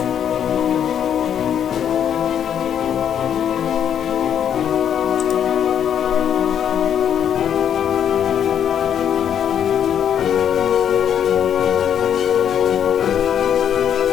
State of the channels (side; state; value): right; quieter; 9.0 dB